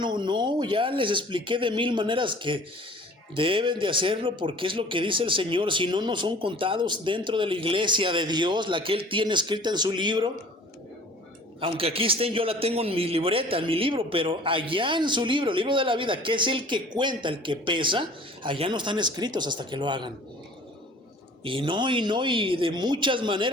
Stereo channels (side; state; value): both; normal; correlation 0.48